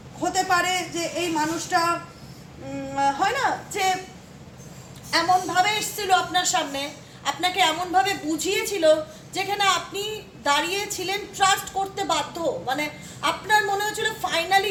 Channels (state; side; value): identical; both; correlation 1.00